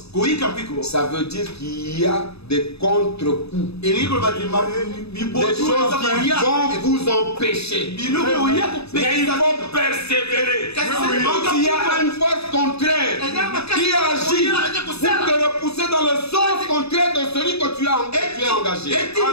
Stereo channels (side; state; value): right; late; 0.79 ms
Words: ça veut dire qu'il y a des contre-coups, des choses qui vont vous empêcher. Mais il faut persévérer. Quand il y a une force contraire qui agit pour te repousser dans le sens contraire de celui que tu as engagé.